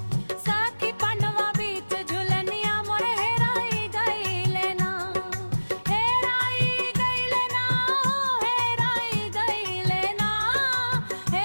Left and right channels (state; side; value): inverted; both; correlation -1.00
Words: सखी पनवा बीच झुलनिया मोर हेराई गईले ना। हेराई गईले ना, हेराई गईले ना,